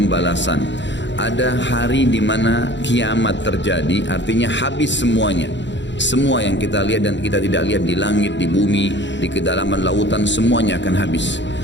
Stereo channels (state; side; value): late; right; 0.53 ms